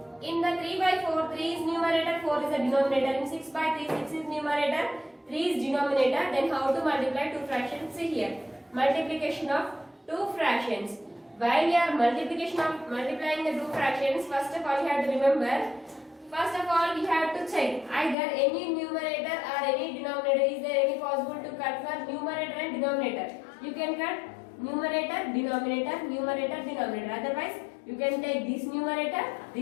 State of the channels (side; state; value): right; drops out; at 18.2 s